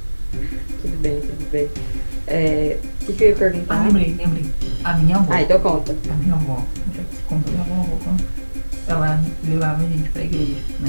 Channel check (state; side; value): inverted; both; correlation -1.00